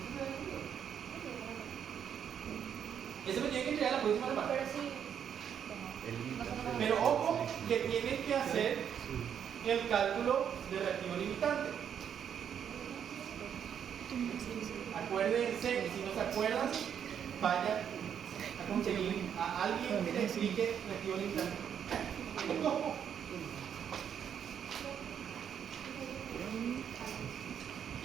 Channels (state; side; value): quieter; left; 8.4 dB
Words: Ese me tiene que entregar la próxima semana. Pero sí. Pero ojo, que tienen que hacer el cálculo de reactivo limitante. Acuérdense, y si no se acuerdan, vayan a conseguir a alguien que les explique reactivo limitante. No.